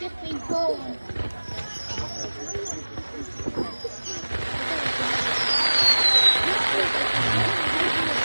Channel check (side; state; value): both; inverted; correlation -1.00